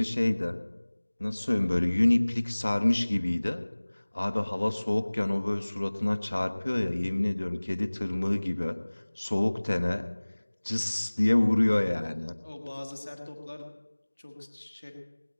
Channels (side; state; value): both; inverted; correlation -1.00